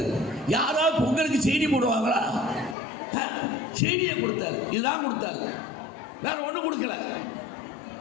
யாராவது பொங்கலுக்கு சீனி போடுவாங்களா? சீனியை கொடுத்தாரு. இதுதான் கொடுத்தாரு, வேற ஒன்றும் கொடுக்கல.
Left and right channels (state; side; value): drops out; right; at 2.8 s